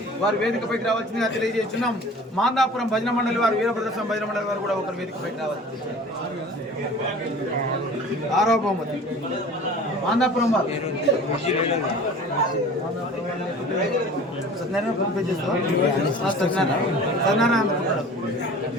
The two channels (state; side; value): normal; both; correlation 0.43